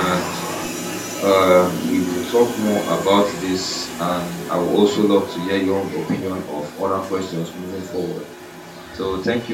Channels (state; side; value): identical; both; correlation 1.00